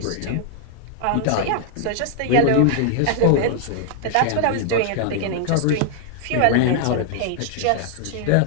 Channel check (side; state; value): both; different; correlation 0.00